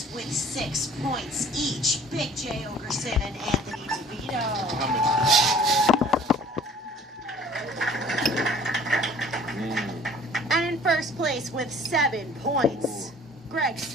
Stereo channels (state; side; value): normal; both; correlation 0.51